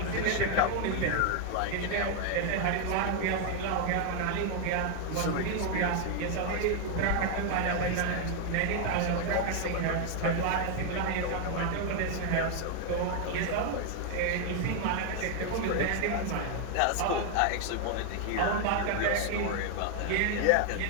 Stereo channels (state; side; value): different; both; correlation 0.00